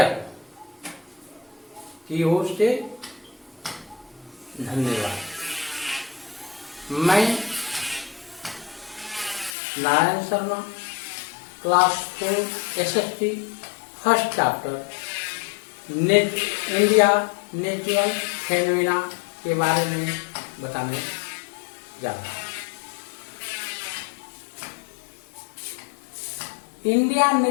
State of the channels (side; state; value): right; drops out; at 9.6 s